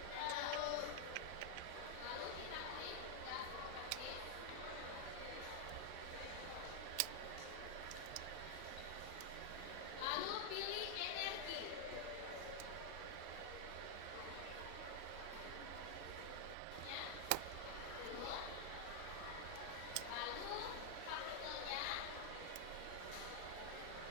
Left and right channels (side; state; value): both; different; correlation 0.00